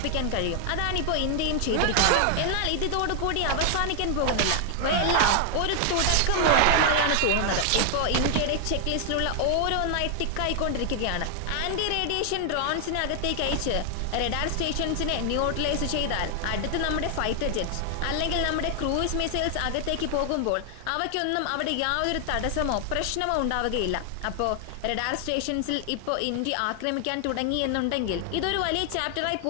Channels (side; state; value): both; different; correlation 0.00